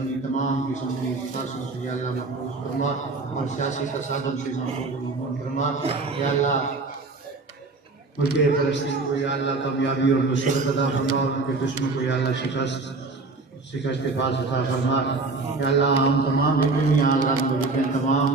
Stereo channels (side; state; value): left; quieter; 3.7 dB